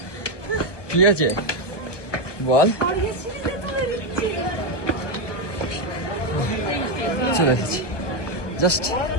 কি হয়েছে বল? চলে এসেছি,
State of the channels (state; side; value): late; right; 1.2 ms